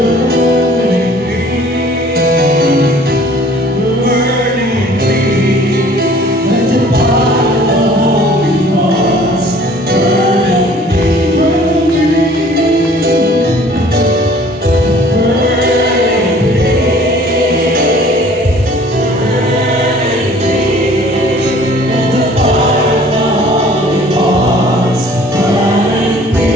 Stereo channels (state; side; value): normal; both; correlation 0.52